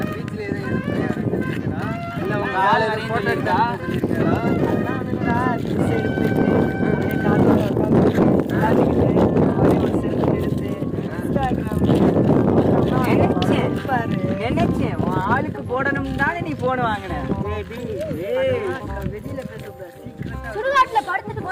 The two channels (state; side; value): identical; both; correlation 1.00